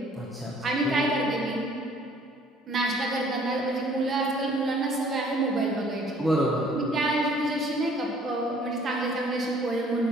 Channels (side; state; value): both; normal; correlation 0.57